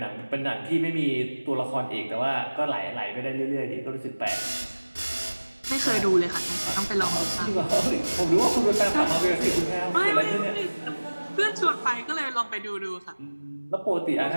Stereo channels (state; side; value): inverted; both; correlation -1.00